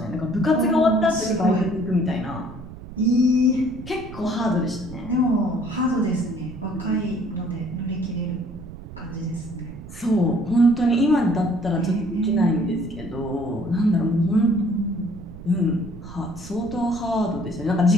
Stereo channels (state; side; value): noise; right; rumble, 14 dB below the sound